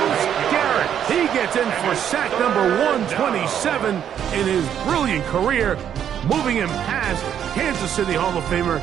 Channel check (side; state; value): left; quieter; 9.3 dB